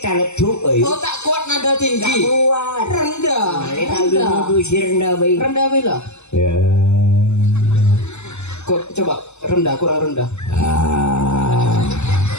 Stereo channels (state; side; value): late; right; 0.82 ms